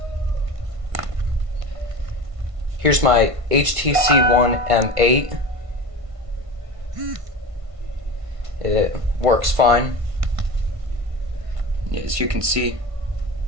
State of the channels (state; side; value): late; left; 1.5 ms